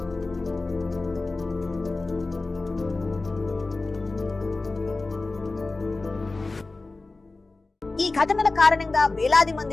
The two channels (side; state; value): right; quieter; 3.4 dB